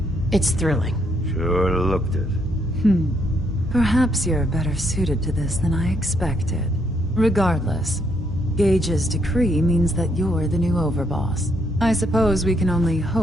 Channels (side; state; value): both; normal; correlation 0.73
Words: it's thrilling. Sure looked it. Perhaps you're better suited to this than I expected. Regardless, Gage's decree means that you're the new overboss. I suppose we can only